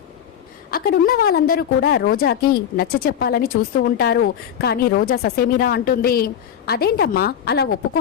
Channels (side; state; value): right; quieter; 9.2 dB